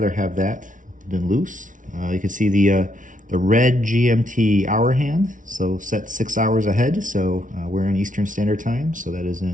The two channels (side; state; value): left; late; 0.38 ms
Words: have that than loose. You can see the red GMT hour hand, so set 6 hours ahead. So we're in Eastern Standard Time, so that is